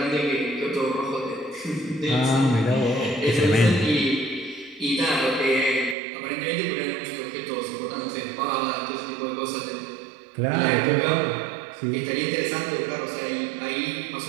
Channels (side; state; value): left; drops out; at 6.0 s